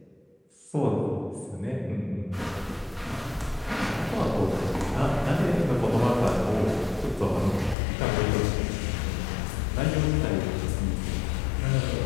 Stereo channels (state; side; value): drops out; right; at 7.8 s